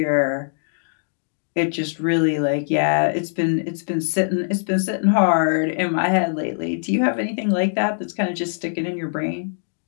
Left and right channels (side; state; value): right; silent; digital silence